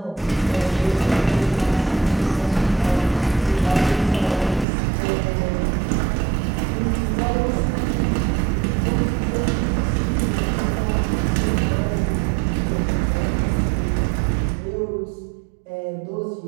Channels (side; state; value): left; drops out; at 4.7 s